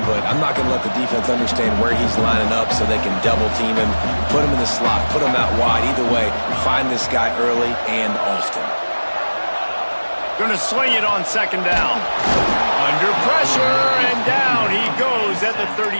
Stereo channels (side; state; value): both; inverted; correlation -1.00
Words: but I'm not going to let the defense understand where he's lining up so they can double team him, put him in the slot, put him out wide. Either way, find this guy early and often. Going to swing it on second down. Under pressure, and down he goes at the